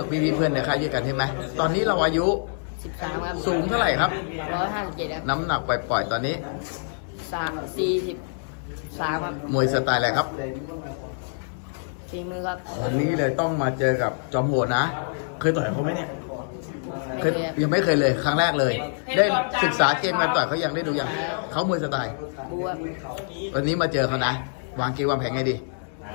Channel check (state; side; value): silent; right; 61 dB below the other